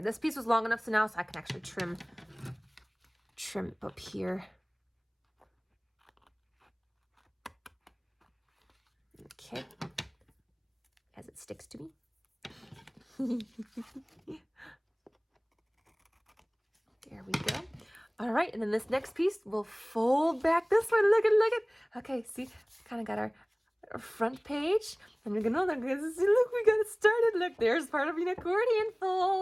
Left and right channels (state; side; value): identical; both; correlation 1.00